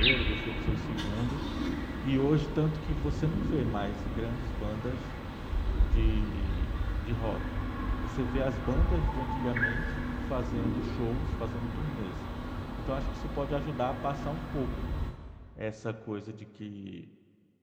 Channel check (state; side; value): identical; both; correlation 1.00